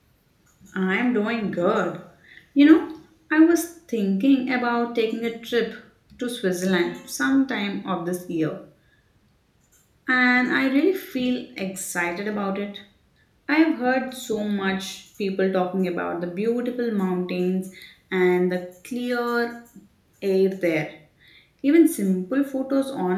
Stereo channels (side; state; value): both; identical; correlation 1.00